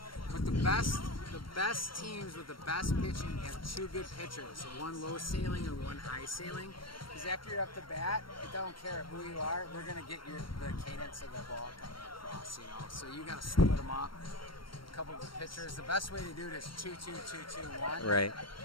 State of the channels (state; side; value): late; right; 0.73 ms